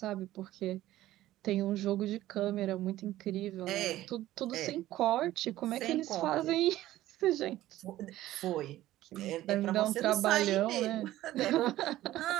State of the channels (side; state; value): left; quieter; 15.0 dB